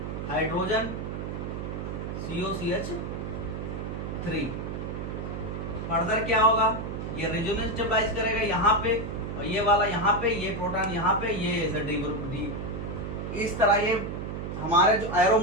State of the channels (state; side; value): noise; right; hum, 5 dB below the sound